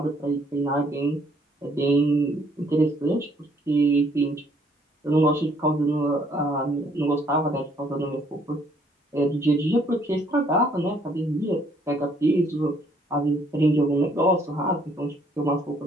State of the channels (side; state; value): both; normal; correlation 0.65